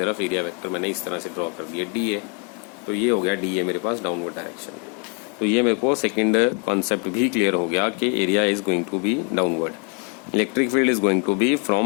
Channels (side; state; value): right; quieter; 35.0 dB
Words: एरिया वेक्टर मैंने इस तरह से ड्रॉ कर दिया डी ए। तो ये हो गया डी ए मेरे पास डाउनवर्ड डायरेक्शन में। तो ये मेरे को सेकंड कॉन्सेप्ट भी क्लियर हो गया कि area is going to be downward, electric field is going to be